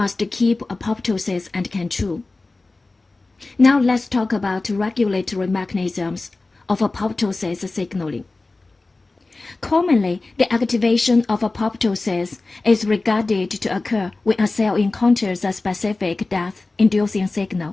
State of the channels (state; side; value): quieter; right; 3.4 dB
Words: keep apoptosis under control. Now let's talk about regulatory mechanisms of apoptosis signaling. Commonly, the activation of apoptosis is regarded to occur when a cell encounters a specific death-inducing